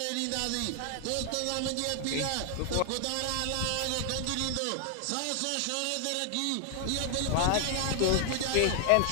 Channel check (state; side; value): different; both; correlation 0.00